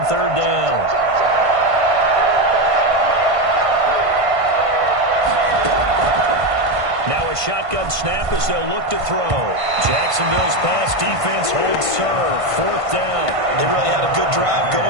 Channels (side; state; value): left; late; 1.5 ms